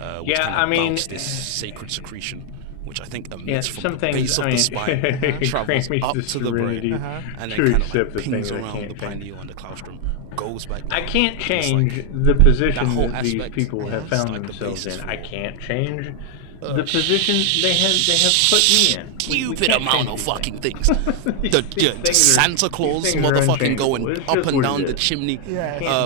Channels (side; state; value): both; different; correlation 0.00